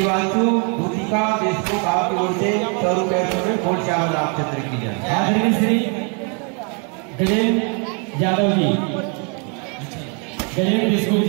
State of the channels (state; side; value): quieter; left; 36.5 dB